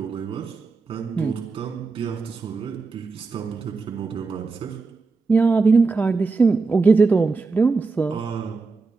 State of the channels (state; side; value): quieter; left; 4.2 dB